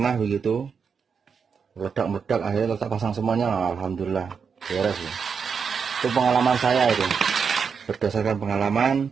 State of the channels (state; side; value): quieter; left; 6.1 dB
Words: begitu, meledak akhirnya tetap pasang semuanya, alhamdulillah beres ya. Itu pengalaman saya itu, berdasarkan pengalaman.